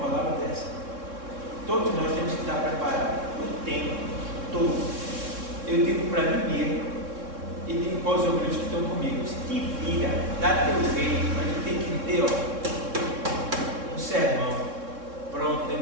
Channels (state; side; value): late; left; 3.6 ms